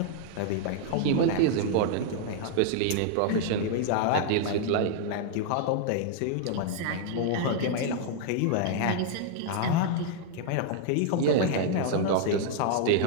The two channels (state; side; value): different; both; correlation -0.01